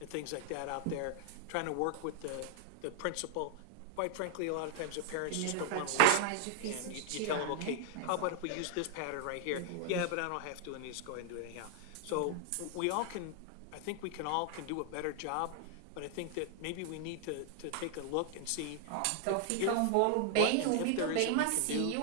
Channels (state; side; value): different; both; correlation 0.00